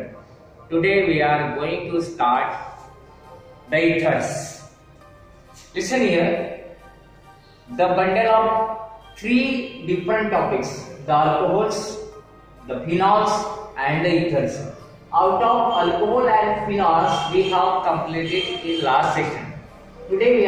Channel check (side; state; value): both; identical; correlation 1.00